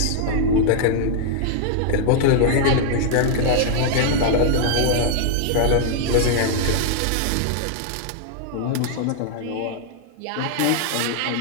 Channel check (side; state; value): both; different; correlation -0.01